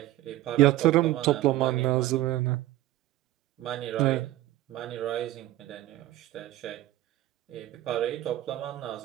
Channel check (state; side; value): quieter; left; 15.1 dB